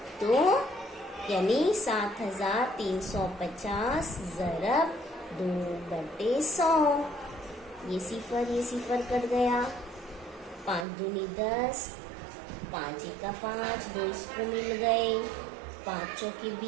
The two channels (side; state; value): left; drops out; at 10.9 s